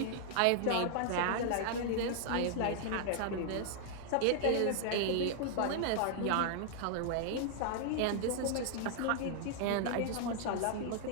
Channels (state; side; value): different; both; correlation -0.01